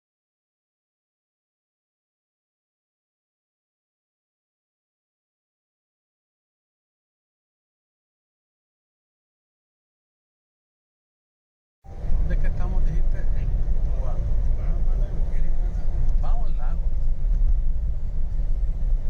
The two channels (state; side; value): identical; both; correlation 1.00